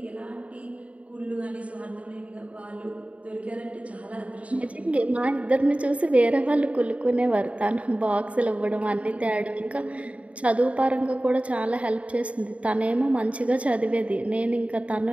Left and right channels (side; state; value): left; late; 0.065 ms